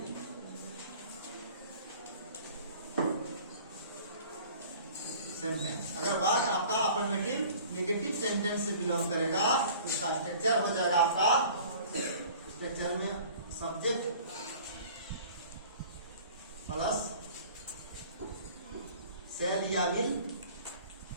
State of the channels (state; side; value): inverted; both; correlation -0.48